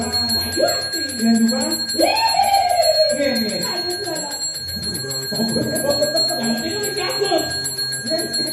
Yang juga? Ini. Ada Dora. Yang ini dicabut.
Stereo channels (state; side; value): identical; both; correlation 1.00